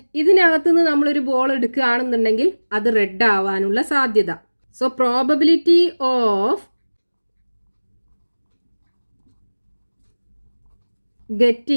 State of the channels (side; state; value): both; inverted; correlation -1.00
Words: ഇതിനകത്തുനിന്ന് നമ്മളൊരു ബോൾ എടുക്കുകയാണെന്നുണ്ടെങ്കിൽ അത് റെഡ് ആവാനുള്ള സാധ്യത. So probability of